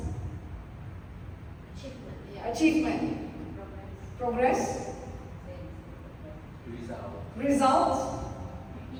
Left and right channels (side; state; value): both; identical; correlation 1.00